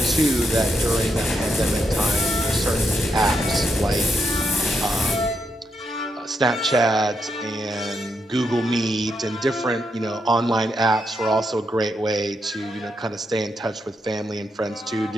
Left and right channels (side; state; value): both; normal; correlation 0.81